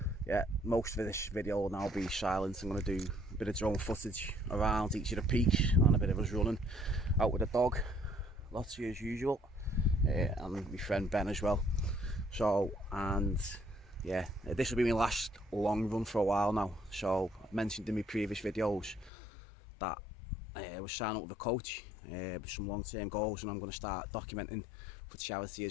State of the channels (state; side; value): drops out; right; at 19.1 s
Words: Yeah, most of this video will now be silent. I'm going to do a bit of drone footage around each of the peaks and a bit of us running out with the dog, lots of you as usual, and my friend Ben as well. So, and yeah, this will be my last long run for a while now. So I mentioned in my previous videos that I was signing up with a coach with some long-term goals, and I'm going to start documenting for charity